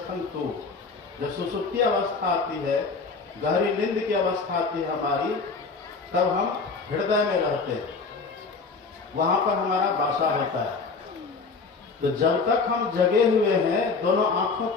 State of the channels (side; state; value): right; quieter; 4.4 dB